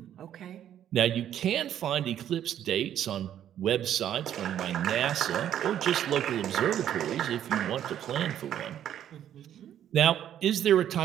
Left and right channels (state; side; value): quieter; left; 10.6 dB